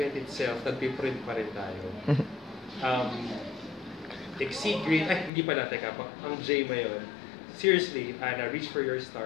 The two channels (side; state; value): right; drops out; at 5.3 s